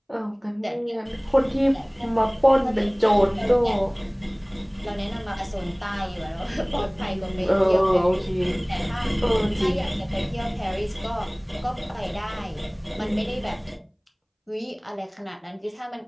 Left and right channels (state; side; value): identical; both; correlation 1.00